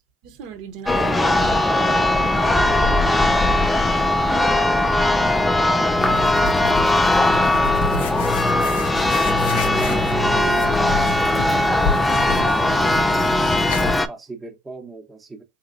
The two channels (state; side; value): normal; both; correlation 0.84